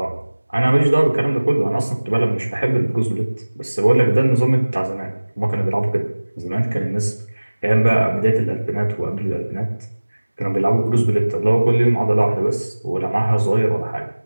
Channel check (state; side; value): inverted; both; correlation -1.00